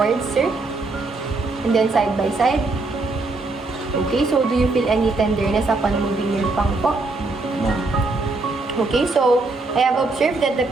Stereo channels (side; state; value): left; quieter; 3.4 dB